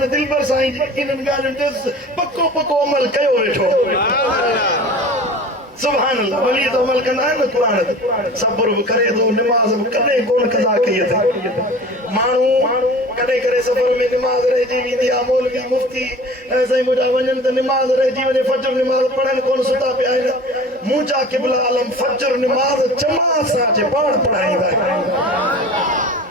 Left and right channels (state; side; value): normal; both; correlation 0.40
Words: दिल पर साईं जी इन्हनि ॻाल्हियुनि ते पको अमल कयो वेठो सुभान अल्लाह वली तो अमल कंदा आहिनि न क़ुरान ते सब्र बि करे थो निमाज़ बि कॾहिं कोन कज़ा कई अथई माण्हू कॾहिं करे सफ़र में निमाज़ रहिजी वेंदी आहे मौलवी मुफ्ती साईं मुंहिंजा वञनि त निमाज़ रहिजी वञे फजर निमाज़ पढ़नि कोन सुता पिया आहिनि मुंहिंजा क़िबला आलम फजर निमाज़ जमात सां अचे पाण पढ़ाईंदा आहिनि